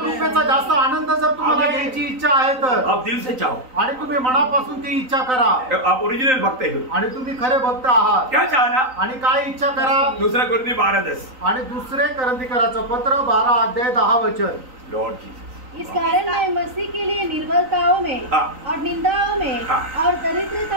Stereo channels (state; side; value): late; left; 3.9 ms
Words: जास्त आनंद जर तुम्हाला घ्यायची इच्छा आहे तर आप दिल से चाहो, आणि तुम्ही मनापासून ती इच्छा करा, आप ओरिजिनल भक्त है, आणि तुम्ही खरे भक्त आहात। क्या चाहना? आणि काय इच्छा करा? दूसरा कोरिन्थियों 12:10, आणि दुसरे कोरिन्थियों पत्र 12:10 वचन। लॉर्ड जीसस, इस कारण मैं मसीह के लिए निर्बलताओं में और निंदाओं में और